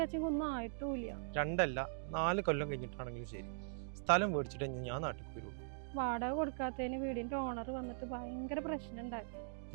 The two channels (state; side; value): silent; left; digital silence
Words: അച്ഛനൊന്നും ആയിട്ടില്ല. 2 അല്ല 4 കൊല്ലം കഴിഞ്ഞിട്ടാണെങ്കിലും ശരി, സ്ഥലം മേടിച്ചിട്ട് ഞാൻ നാട്ടിൽ വരുള്ളൂ. വാടക കൊടുക്കാത്തതിന് വീടിന്റെ ഓണർ വന്നിട്ട് ഭയങ്കര പ്രശ്നം ഉണ്ടാക്കി.